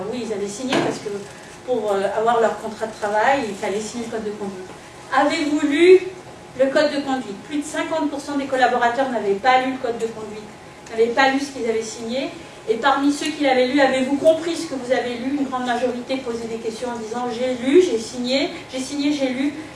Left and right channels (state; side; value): identical; both; correlation 1.00